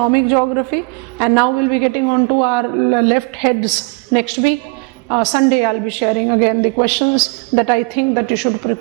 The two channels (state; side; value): quieter; left; 30.8 dB